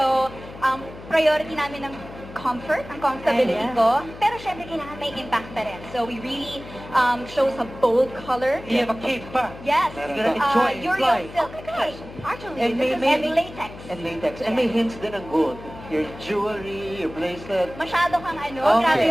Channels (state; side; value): noise; left; hum, 15 dB below the sound